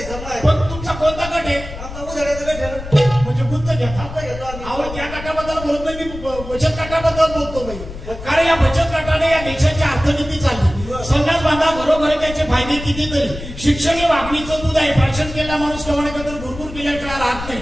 आहे. पण तुमचा कोणता गट आहे? आमचा उधाड्याचा गट आहे ना. म्हणजे गुंत घेतात. आता घेतो आम्ही. अहो त्या गटाबद्दल बोलत नाही मी बचत गटाबद्दल बोलतो बाई. कारण या बचत गटाने या देशाची अर्थनीती चालली. संडास बांधा घरोघरी त्याचे फायदे कितीतरी. शिक्षण हे वागणीचं दूध आहे. भाषण केला माणूस कमाण्याबद्दल भरपूर केल्याशिवाय राहत नाही.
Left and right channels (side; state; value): left; noise; rumble, 11 dB below the sound